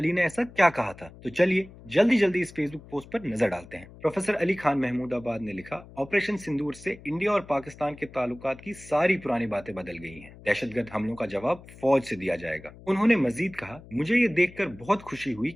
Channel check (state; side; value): noise; left; hum, 19 dB below the sound